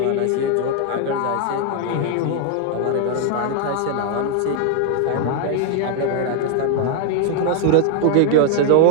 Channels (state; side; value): different; both; correlation 0.00